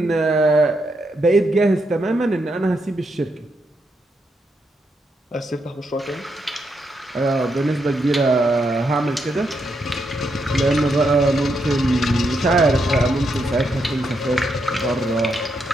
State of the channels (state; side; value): normal; both; correlation 0.80